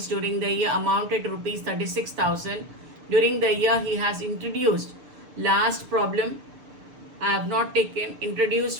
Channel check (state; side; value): late; left; 6.7 ms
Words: during the year amounted to rupees 36,000. During the year he has introduced last problem. I have not introduced